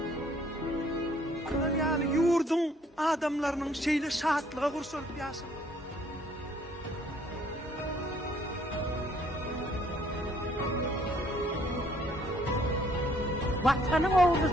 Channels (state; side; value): normal; both; correlation 0.63